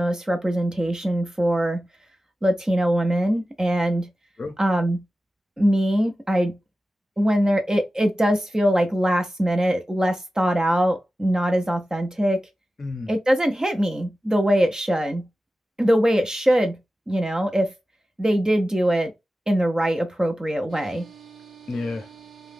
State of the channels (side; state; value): both; normal; correlation 0.94